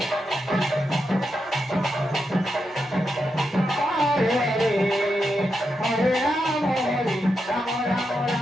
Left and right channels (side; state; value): both; normal; correlation 0.86